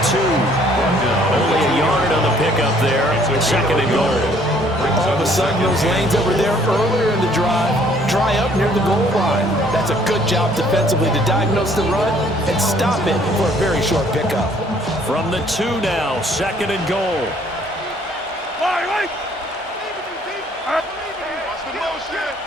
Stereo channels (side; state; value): both; normal; correlation 0.61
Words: 2. Only a yard on the pickup there. 2nd and goal. All of a sudden, those lanes that were there earlier in the drive dry up near the goal line. That's a good job defensively to diagnose the run and stop it for a very short pickup. From the 2 now, 2nd and goal.